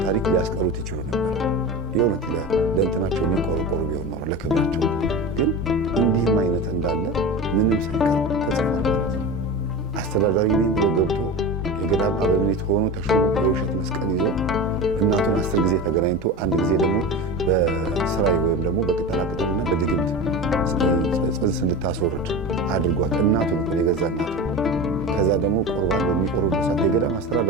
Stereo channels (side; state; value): both; normal; correlation 0.27